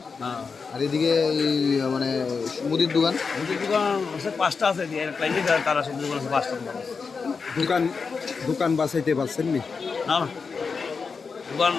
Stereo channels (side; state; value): right; quieter; 5.1 dB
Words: হ্যাঁ, আর এদিকে এই মানে মুদির দোকান? মুদির দোকান আছে 5টা আছে, তারা সবজি দোকান আছে 5টা দোকান আছে। দোকান বাঁচাইতে পারছেন নি? না না, দোকান